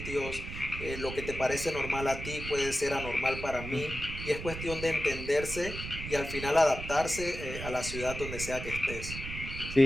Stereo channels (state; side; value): noise; right; rumble, 8 dB below the sound